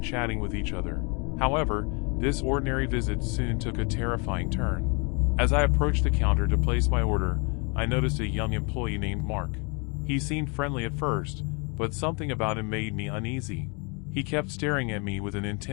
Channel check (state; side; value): quieter; right; 32.8 dB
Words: chatting with each other. However, this ordinary visit soon took a terrifying turn. As I approached the counter to place my order, I noticed a young employee named Mark. He seemed friendly at first, but something about him made me uneasy. He kept staring at me with an